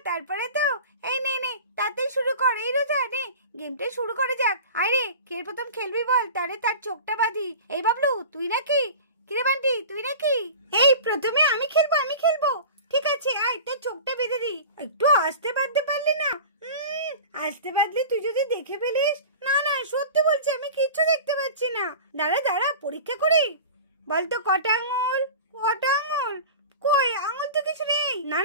তারপরে তো। এই নে তাড়াতাড়ি শুরু কর। এই রোজা নে, গেমটা শুরু করে যাক। আরে কে প্রথম খেলবি বল, তাহলে তার চোখটা বাঁধি। এই বাবলু তুই নাকি? কিরে বান্টি তুই নাকি? এই প্রথমে আমি খেলবো। ঠিক আছে, আয় তোর চোখটা বেঁধে দি। একটু আস্তে বাঁধতে পারলি না? আস্তে বাঁধলে তুই যদি দেখে ফেলিস। না সত্যি বলছি, আমি কিচ্ছু দেখতে পাচ্ছি না। দাঁড়া পরীক্ষা করি। বলতো কটা আঙুল? কই আঙুল তো কিছু নেই।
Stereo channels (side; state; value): both; inverted; correlation -0.36